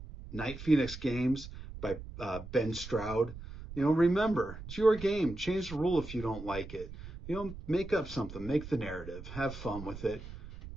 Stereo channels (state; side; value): noise; right; rumble, 12 dB below the sound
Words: Night Phoenix Games by Ben Stroud. Remember, it's your game. Change the rule if you don't like it. Make up something. Make the narrative. Have fun with it.